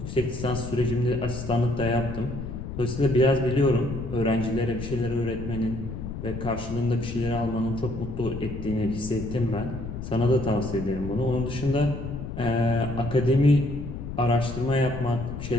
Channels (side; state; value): left; noise; rumble, 7 dB below the sound